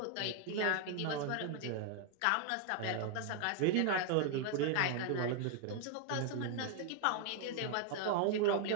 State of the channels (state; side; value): different; both; correlation 0.00